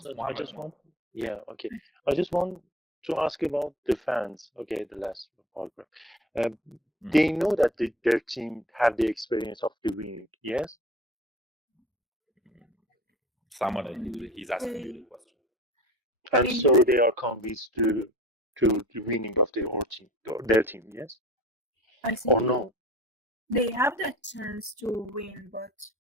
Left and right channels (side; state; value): both; normal; correlation 0.40